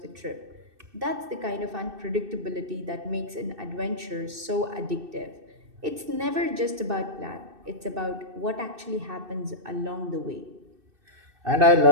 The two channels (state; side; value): late; left; 2.6 ms